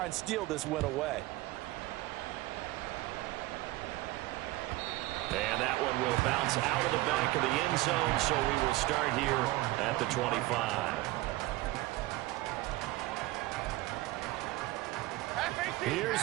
and steal this win away. And that one will bounce out of the back of the end zone, so we will start here at the 25. Here's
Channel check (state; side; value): quieter; left; 18.8 dB